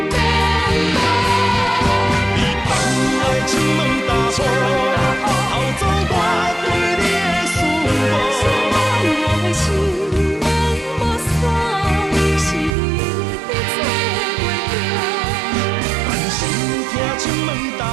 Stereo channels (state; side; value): drops out; left; at 12.8 s